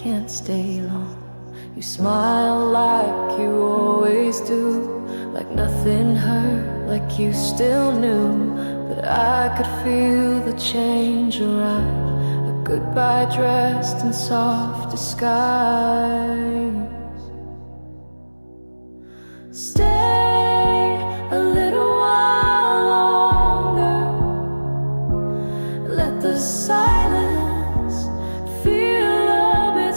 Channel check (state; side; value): inverted; both; correlation -1.00